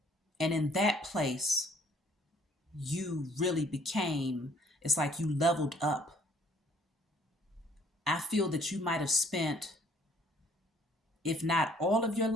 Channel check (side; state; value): both; normal; correlation 0.60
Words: And in that place, you really became, it's like you leveled up. I feel that you might have spent, if not all of your